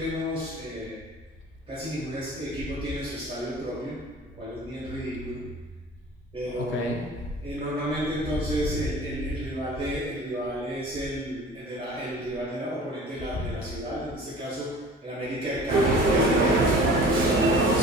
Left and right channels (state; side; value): normal; both; correlation 0.44